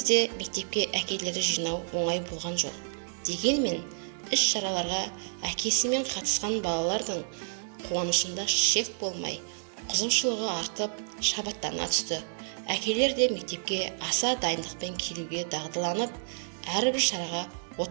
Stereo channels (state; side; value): silent; left; digital silence